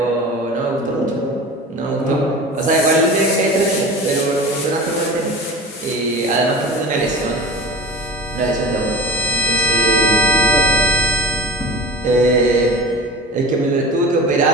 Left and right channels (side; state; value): both; normal; correlation 0.33